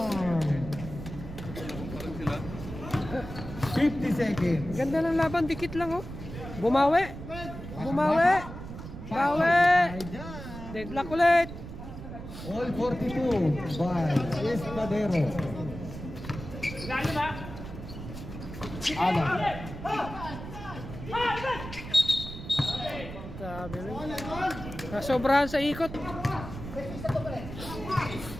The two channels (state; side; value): noise; right; rumble, 10 dB below the sound